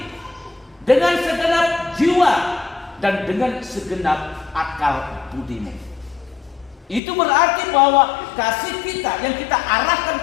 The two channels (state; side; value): drops out; right; at 7.0 s